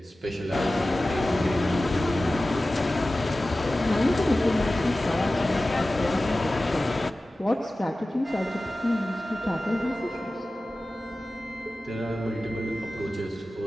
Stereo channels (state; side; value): normal; both; correlation 0.96